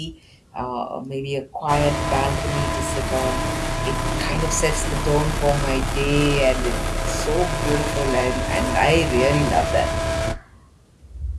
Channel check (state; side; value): identical; both; correlation 1.00